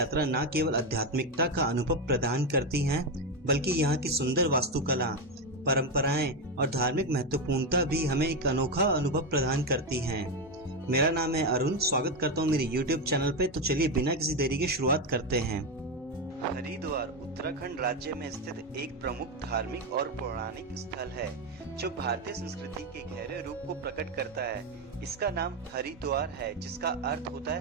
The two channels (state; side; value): normal; both; correlation 0.10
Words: न केवल आध्यात्मिकता का अनुभव प्रदान करती हैं, बल्कि यहाँ की सुंदर वास्तुकला, परंपराएं और धार्मिक महत्वपूर्णता भी हमें एक अनोखा अनुभव प्रदान करती हैं। मेरा नाम है अरुण, स्वागत करता हूँ मेरे YouTube चैनल पे। तो चलिए बिना किसी देरी के शुरुआत करते हैं। हरिद्वार उत्तराखंड राज्य में स्थित एक प्रमुख धार्मिक और पौराणिक स्थल है जो भारतीय संस्कृति के गहरे रूप को प्रकट करता है। इसका नाम हरिद्वार है, जिसका अर्थ होता